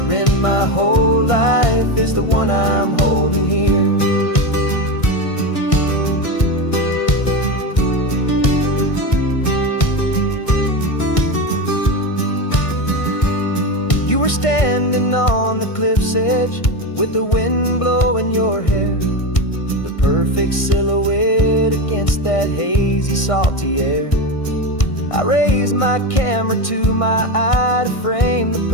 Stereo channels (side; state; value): right; late; 1.6 ms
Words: in my whole life is the one I'm holding here. You were standing on the cliff's edge with the wind blowing your hair, the perfect silhouette against that hazy, salty air. I raised my camera to my eye to frame the